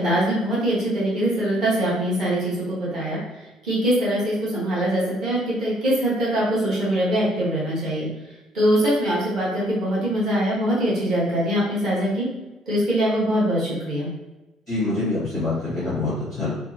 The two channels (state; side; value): normal; both; correlation 0.63